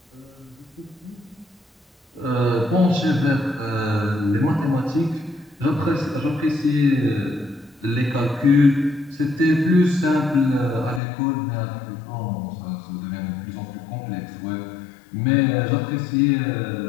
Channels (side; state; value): right; drops out; at 11.0 s